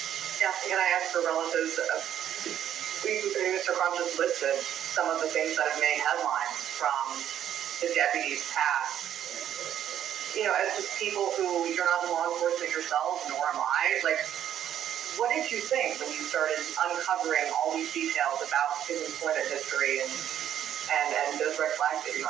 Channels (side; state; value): left; quieter; 10.5 dB